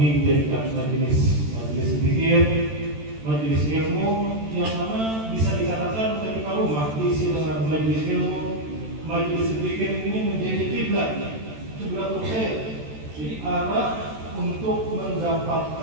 dijadikan majelis zikir, majelis ilmu, yang mana bisa dikatakan ketika rumah diisi dengan majelis ilmu, majelis zikir ini menjadi kiblatul khair, jadi arah untuk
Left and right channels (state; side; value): late; left; 13 ms